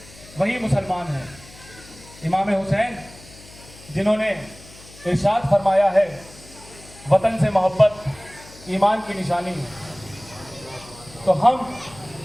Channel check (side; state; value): left; noise; hum, 21 dB below the sound